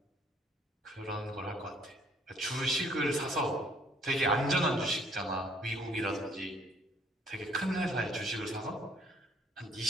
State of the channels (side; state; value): both; normal; correlation 0.62